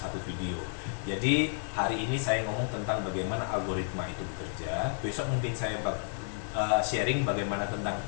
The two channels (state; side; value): silent; right; 57 dB below the other